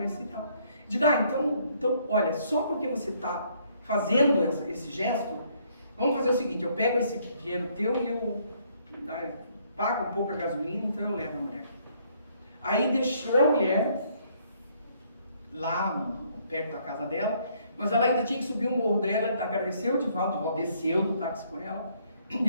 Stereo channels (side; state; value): both; inverted; correlation -0.67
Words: e tal. Digo, então, olha, só porque você está fazendo esse gesto, vamos fazer o seguinte, eu pego esse dinheiro teu e eu pago um pouco a gasolina, então eu levo a mulher. Aí deixou a mulher lá perto da casa dela, mas ela ainda tinha que subir o morro dela, agradeceu o Divaldo desceu do táxi com ela, e